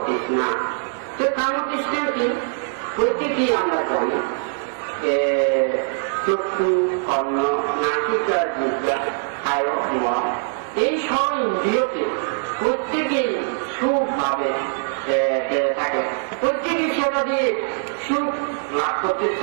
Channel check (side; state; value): left; silent; 64 dB below the other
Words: তৃষ্ণা। তো কাম তৃষ্ণা কি? প্রত্যেকেই আমরা জানি চক্ষু, কর্ণ, নাসিকা, জিহ্বা, কায়, মন, এই সব ইন্দ্রিয়কে প্রত্যেকেই সুখ ভাবে থাকে, প্রত্যেকেই সেটা দিয়ে সুখ লাভ করতে